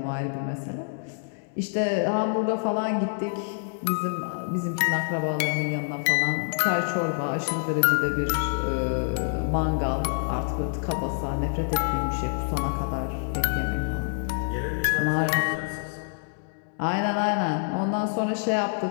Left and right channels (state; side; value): silent; right; digital silence